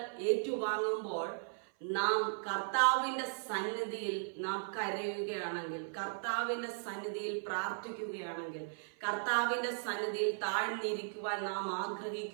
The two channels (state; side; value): silent; left; 53 dB below the other